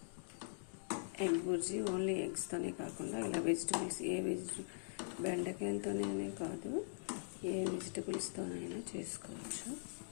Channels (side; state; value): right; silent; digital silence